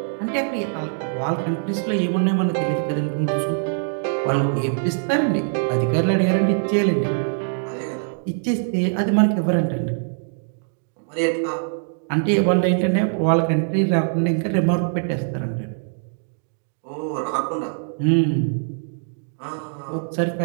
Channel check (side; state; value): left; silent; digital silence